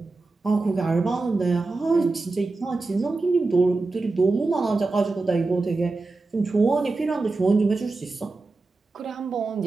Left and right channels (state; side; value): quieter; left; 3.5 dB